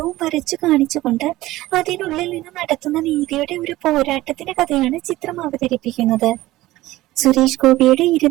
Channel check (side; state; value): left; quieter; 17.1 dB